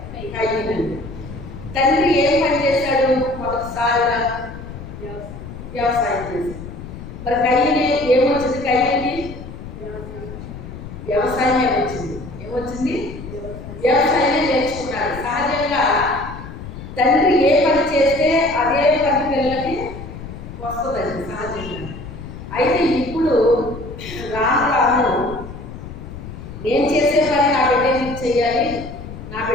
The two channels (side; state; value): left; noise; rumble, 12 dB below the sound